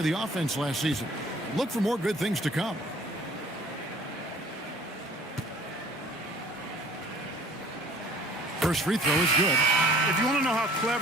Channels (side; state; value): both; normal; correlation 0.51